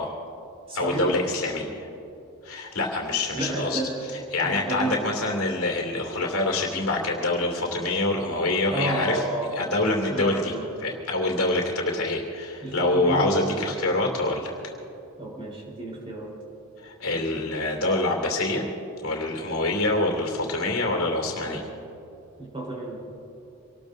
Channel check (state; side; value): normal; both; correlation 0.06